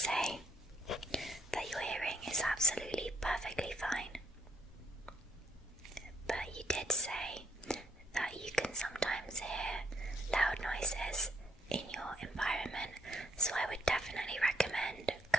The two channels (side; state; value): both; normal; correlation 0.73